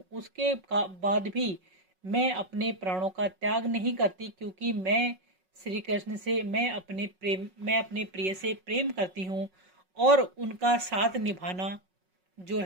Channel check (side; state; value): left; late; 5.4 ms